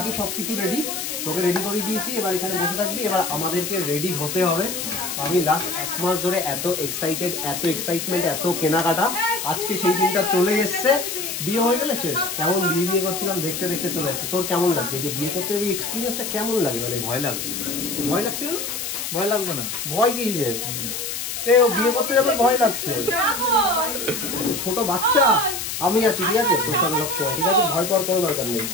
সবকিছু রেডি, তোকে রেডি করে দিয়েছি। এবার এখানে বসে থাকবি, এবার আমাদেরকে রেডি হতে হবে। আমি লাস্ট 1 মাস ধরে এত এক্সাইটেড, এত এক্সাইটমেন্ট, এত কেনাকাটা, আজকে সেই দিনটা চলে এসছে। বিয়ে হয়ে গেলে শেষ। কেমন বিয়ে করছিলাম, দেখতে দেখতে চলে এসছে। তোর কেমন লাগছে যে বিয়ে করতে হবে, এক্সপিরিয়েন্সটা কেমন লাগে? মানে ভয় লাগছে। ভয় লাগছিল? ভয় লাগবে না। ভয় কিসের? ও বিয়ে করতে যাবে ভয় লাগছে? ছোট বাচ্চা, আমি আছি, ঠিক আছে তোর সঙ্গে সবসময়, ঠিক আছে? ভয় পাওয়ার কোনো দরকার নেই,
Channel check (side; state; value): left; noise; hiss, 4 dB below the sound